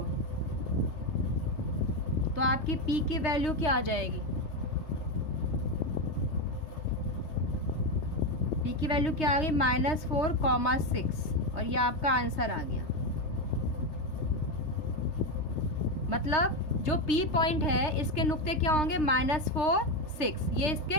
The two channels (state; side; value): late; right; 3.2 ms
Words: तो आपकी P की वैल्यू क्या आ जाएगी, P की वैल्यू क्या आ गई -4,6 और ये आपका आंसर आ गया। मतलब जो P पॉइंट है इसके नुक्ते क्या होंगे, -4 6, ये इसके